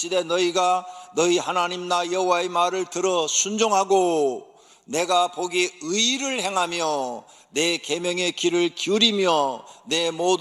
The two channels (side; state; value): both; identical; correlation 1.00